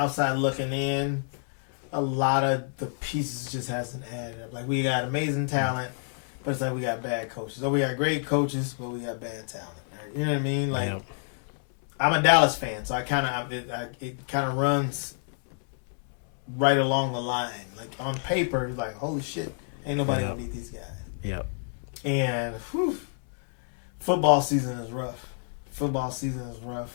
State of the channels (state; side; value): silent; right; 59 dB below the other